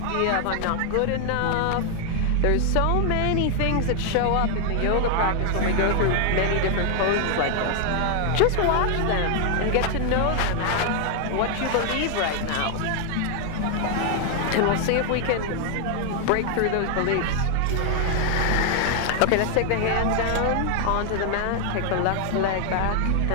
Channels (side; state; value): both; different; correlation 0.00